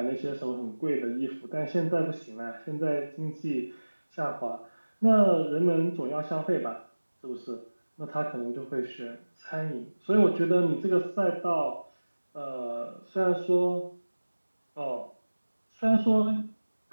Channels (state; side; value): inverted; both; correlation -1.00